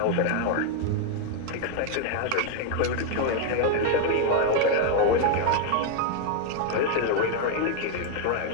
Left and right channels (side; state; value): both; different; correlation 0.01